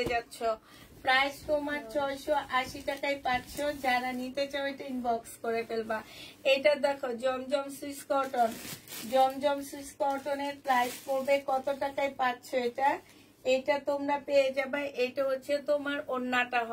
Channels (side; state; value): both; identical; correlation 1.00